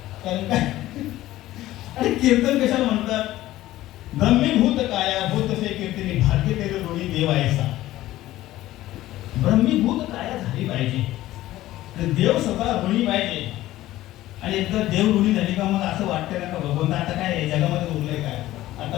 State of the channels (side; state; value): right; quieter; 15.5 dB